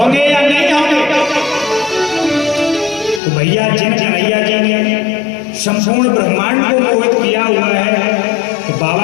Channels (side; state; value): right; drops out; at 3.2 s